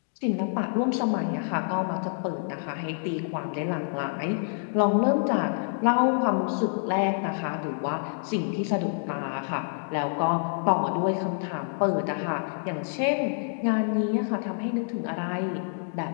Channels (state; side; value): silent; right; digital silence